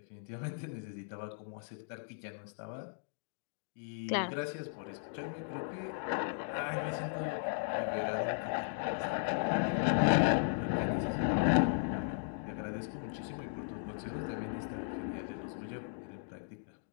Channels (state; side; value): silent; right; digital silence